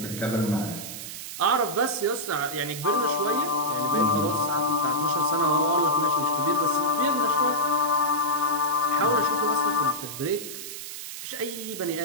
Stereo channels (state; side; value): noise; right; hiss, 9 dB below the sound